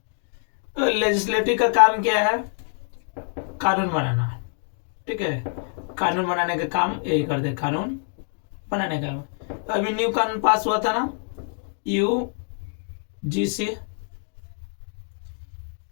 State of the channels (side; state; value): right; silent; 57 dB below the other